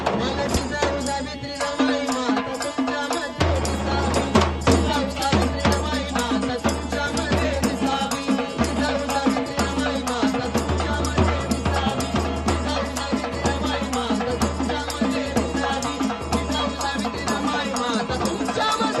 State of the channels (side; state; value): both; identical; correlation 1.00